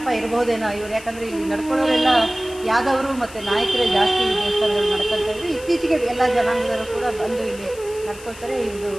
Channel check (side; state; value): left; noise; hiss, 18 dB below the sound